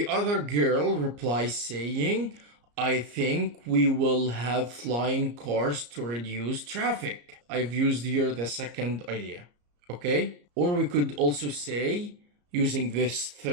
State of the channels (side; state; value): left; late; 34 ms